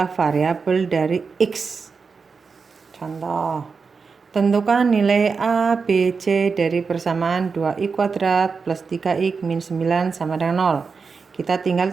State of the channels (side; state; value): left; quieter; 5.1 dB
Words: variabel dari X. Contoh, tentukan nilai A, B, C dari persamaan 2x kuadrat plus 3x min 9 sama dengan 0. Kita tinggal